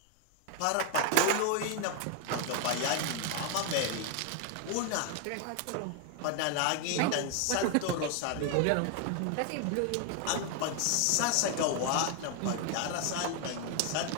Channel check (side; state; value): both; different; correlation 0.00